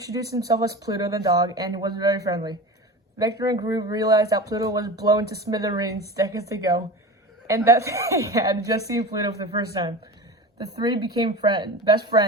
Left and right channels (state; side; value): normal; both; correlation 0.30